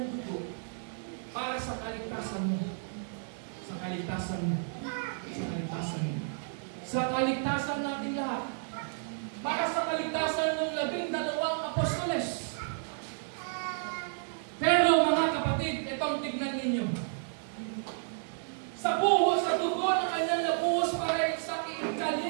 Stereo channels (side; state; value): left; silent; digital silence